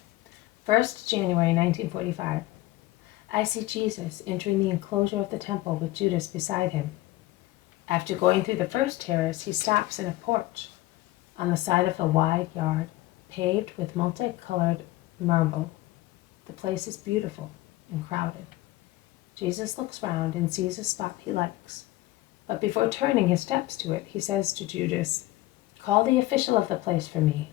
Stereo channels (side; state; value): right; quieter; 17.5 dB